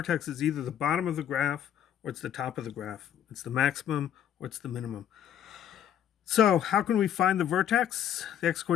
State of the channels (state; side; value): quieter; right; 10.0 dB